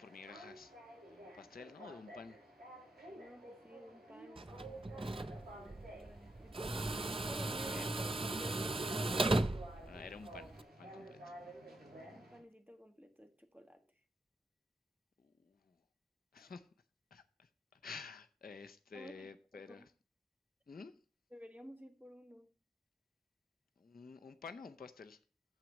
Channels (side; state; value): both; normal; correlation 0.81